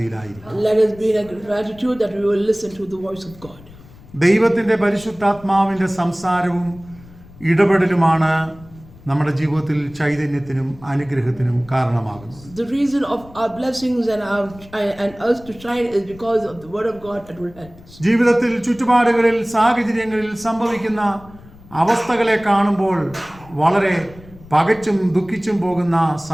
Let us be in gratitude that we will listen to the voice of God. ദൈവത്തിന്റെ പരിശുദ്ധാത്മാവിന്റെ സംസാരവും ഇടപെടലുമാണ് നമ്മുടെ ജീവിതത്തിൽ ചൈതന്യത്തിനും അനുഗ്രഹത്തിനും കാരണമാകുന്നത്. The reason of our blessings and us to shine is because of the word of God that will help us. ജീവിതത്തിൽ ചുറ്റുപാടുകളിൽ സാഹചര്യങ്ങളിൽ സംഭവിക്കുന്ന അവസ്ഥകളെ കാണുമ്പോൾ വളരെ പകച്ചും ദുഃഖിച്ചും പോകുന്ന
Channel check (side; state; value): left; noise; rumble, 22 dB below the sound